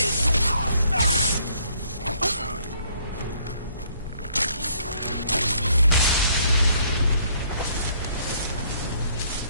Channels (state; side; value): inverted; both; correlation -0.65